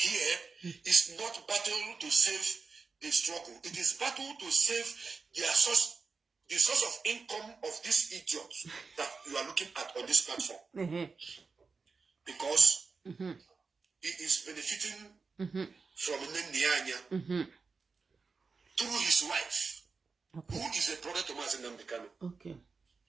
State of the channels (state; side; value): quieter; left; 4.7 dB